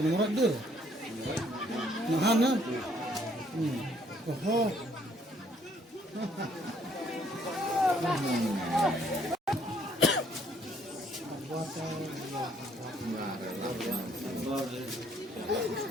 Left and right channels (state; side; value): normal; both; correlation 0.65